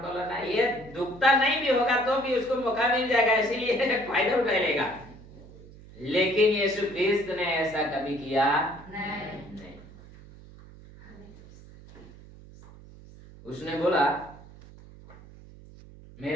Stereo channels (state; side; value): noise; right; hum, 20 dB below the sound